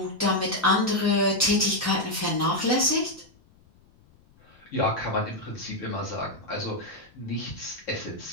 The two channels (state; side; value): noise; left; rumble, 29 dB below the sound